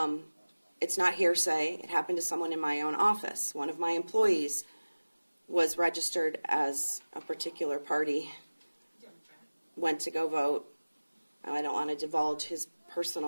It's not hearsay. It happened to someone in my own office. One of my employees was registered as a particular party, went to go vote. I don't want to divulge his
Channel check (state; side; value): inverted; both; correlation -1.00